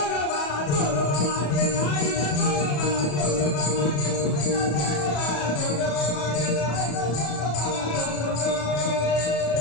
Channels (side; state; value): right; late; 34 ms